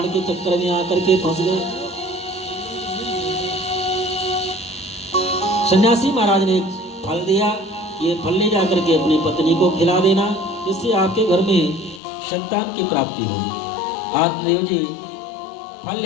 के चक्कर में आकर के फंस गए। सन्यासी महाराज ने फल दिया, ये फल ले जाकर के अपनी पत्नी को खिला देना, जिससे आपके घर में संतान की प्राप्ति होगी। आत्मदेव जी फल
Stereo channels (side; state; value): right; drops out; at 12.0 s